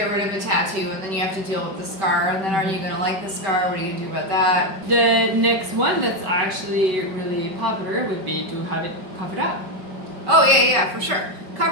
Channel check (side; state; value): left; late; 5.2 ms